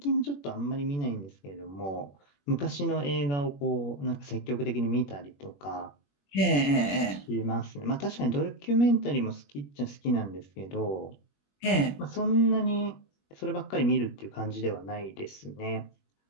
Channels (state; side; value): late; right; 21 ms